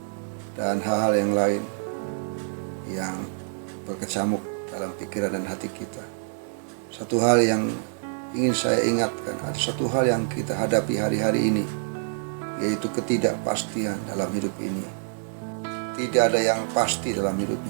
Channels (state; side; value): silent; left; digital silence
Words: dan hal-hal yang lain yang berkecamuk dalam pikiran dan hati kita. Satu hal yang ingin saya ingatkan, ada satu hal yang kita hadapi hari-hari ini, yaitu ketidakpastian dalam hidup ini. Tidak ada yang pasti dalam hidup